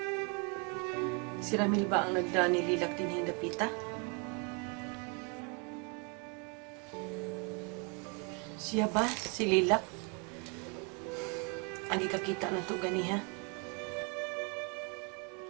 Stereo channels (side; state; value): left; quieter; 33.5 dB